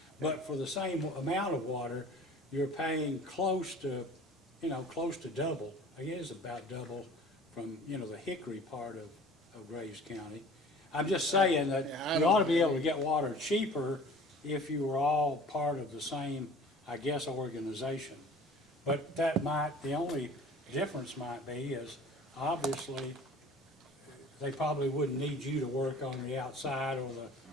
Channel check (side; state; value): both; normal; correlation 0.45